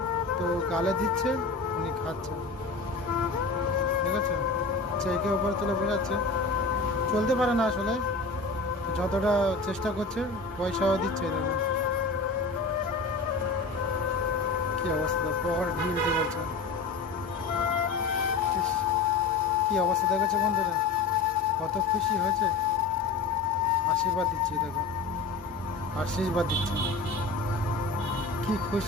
তো গালে দিচ্ছে, উনি খাচ্ছে। ঠিক আছে, একে উপরে তুলে বেড়াচ্ছে। চলতে পারে না আসলে, যতটা চেষ্টা করছে পয়সাও দিচ্ছে। দেখো কি অবস্থা, পকেট ঢিল দিয়ে বলছে। ইস, কি অবস্থা দেখেছো বন্ধুরা, কত খুশি হয়েছে। আশীর্বাদ দিচ্ছি দেখো, আশীর্বাদ দিচ্ছি, কি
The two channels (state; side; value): quieter; right; 4.0 dB